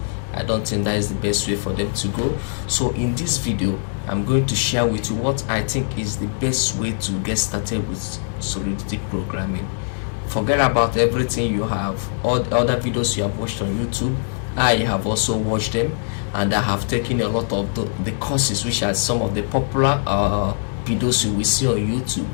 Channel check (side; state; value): right; silent; digital silence